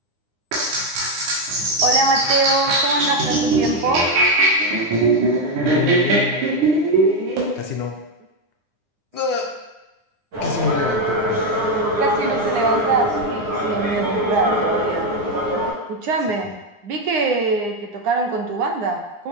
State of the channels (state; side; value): late; left; 9.8 ms